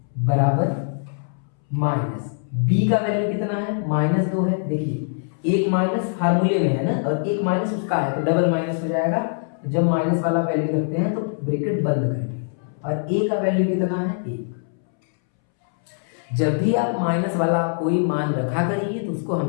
बराबर माइनस बी का वैल्यू कितना है -2 है। देखिए एक माइनस फार्मूले में है ना, और एक माइनस उसका है तो डबल माइनस हो जाएगा। जब माइनस वाला वैल्यू रखते हैं तो ब्रैकेट बंद करेंगे, और ए का वैल्यू कितना है 1। जब भी आप माइनस वाला कोई मान रखा करिए तो उसको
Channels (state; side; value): silent; right; 64 dB below the other